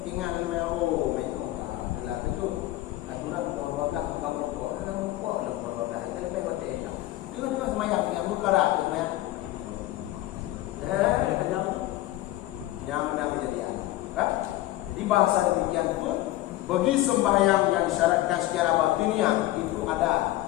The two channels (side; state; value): right; quieter; 16.1 dB